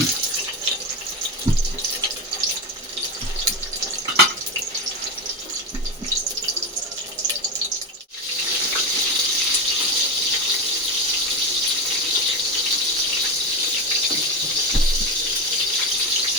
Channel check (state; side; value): normal; both; correlation 0.17